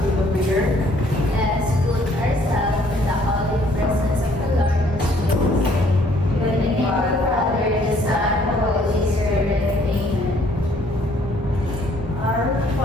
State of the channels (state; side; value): normal; both; correlation 0.62